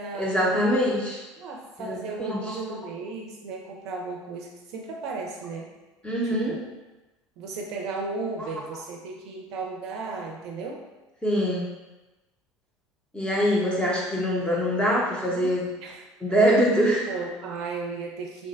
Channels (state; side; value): normal; both; correlation 0.53